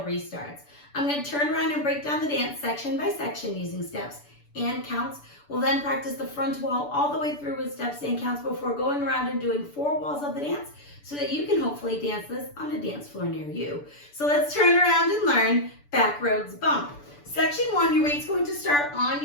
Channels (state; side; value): late; right; 6.9 ms